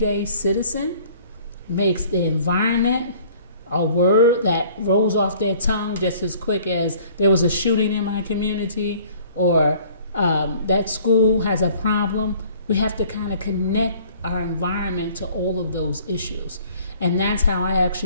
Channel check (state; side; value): inverted; both; correlation -0.53